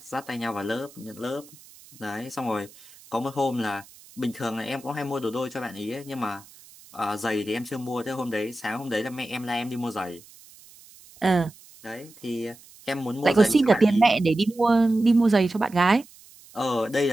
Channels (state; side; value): noise; right; hiss, 23 dB below the sound